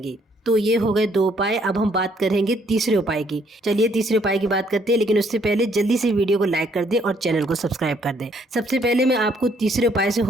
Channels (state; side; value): normal; both; correlation 0.67